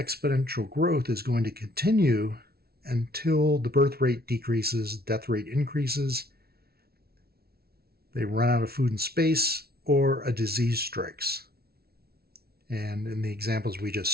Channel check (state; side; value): late; left; 0.45 ms